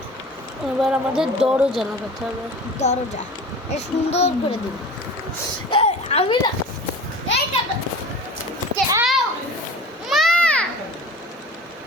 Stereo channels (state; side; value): normal; both; correlation 0.38